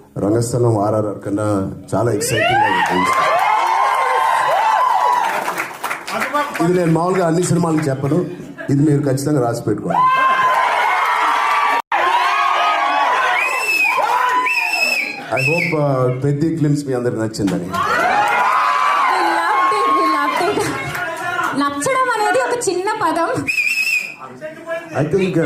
రంగస్థలం ఆర్ఆర్ఆర్ కన్నా చాలా ఎక్సైటింగ్ ఉంటుంది. ఇది నేను మామూలుగా అన్ని సినిమాలకు చెప్పను, ఇది మీరు ఖచ్చితంగా రాసి పెట్టుకోండి. ఐ హోప్ పెద్ద క్లిమ్స్ మీ అందరికి నచ్చిందని. నచ్చడం అనేది ఒక చిన్న పదం. I think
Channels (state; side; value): identical; both; correlation 1.00